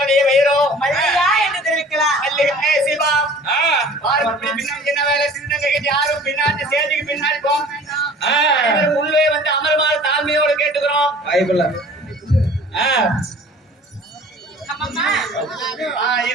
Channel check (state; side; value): normal; both; correlation 0.47